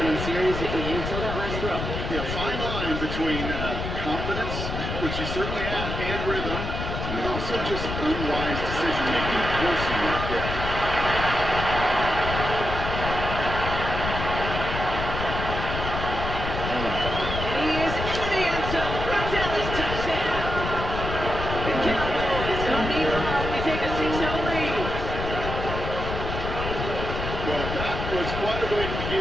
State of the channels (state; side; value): noise; left; rumble, 4 dB below the sound